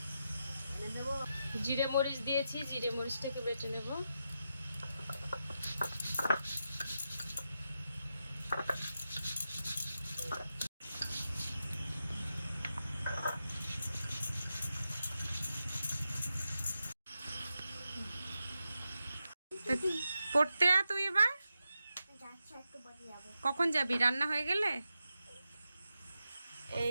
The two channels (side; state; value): both; inverted; correlation -0.88